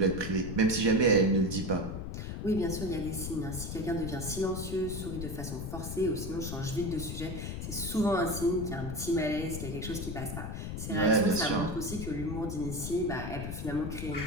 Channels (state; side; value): noise; left; rumble, 5 dB below the sound